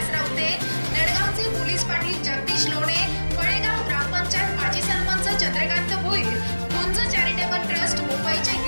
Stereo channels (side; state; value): both; inverted; correlation -1.00